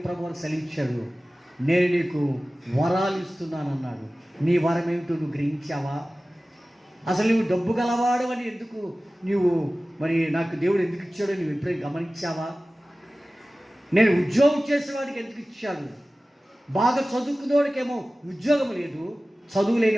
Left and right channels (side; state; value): both; normal; correlation 0.97